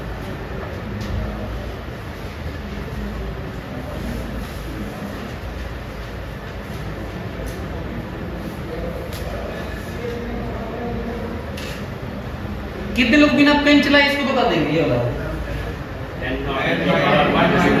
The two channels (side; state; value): both; identical; correlation 1.00